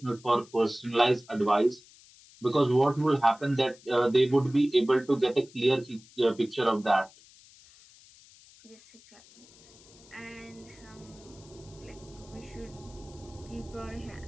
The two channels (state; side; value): noise; left; hiss, 24 dB below the sound